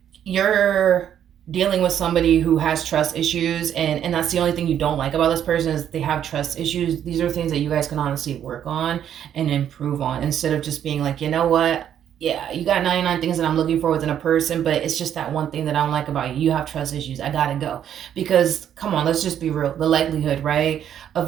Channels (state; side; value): quieter; left; 9.8 dB